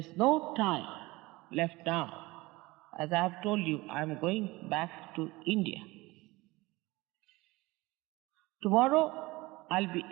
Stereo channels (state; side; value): quieter; left; 21.5 dB